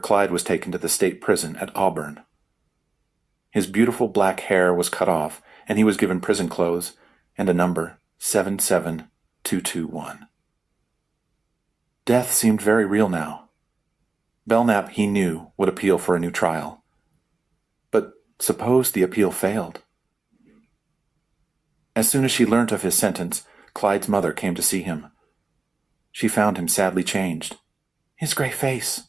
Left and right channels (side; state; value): left; quieter; 3.8 dB